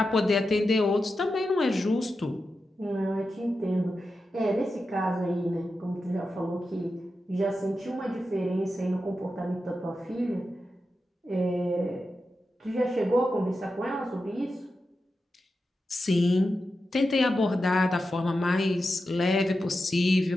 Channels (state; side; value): normal; both; correlation 0.90